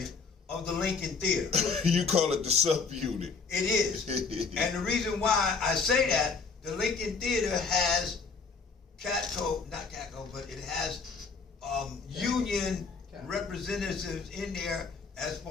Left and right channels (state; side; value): quieter; right; 4.9 dB